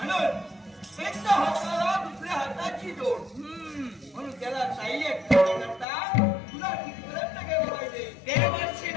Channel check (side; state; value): right; drops out; at 5.9 s